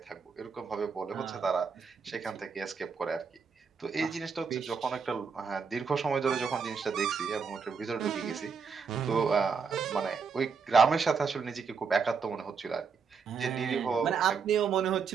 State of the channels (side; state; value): left; quieter; 5.6 dB